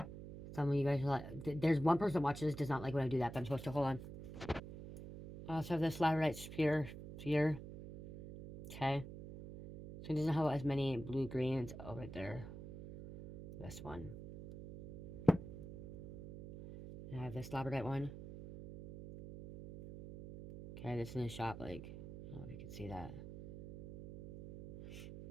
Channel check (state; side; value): noise; right; hum, 11 dB below the sound